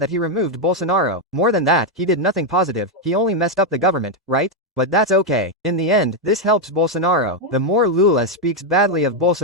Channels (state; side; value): normal; both; correlation 0.03